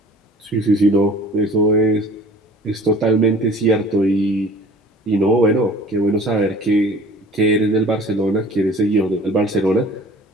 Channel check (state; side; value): normal; both; correlation 0.47